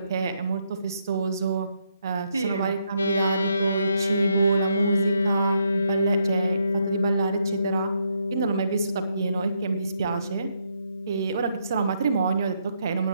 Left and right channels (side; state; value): both; inverted; correlation -0.77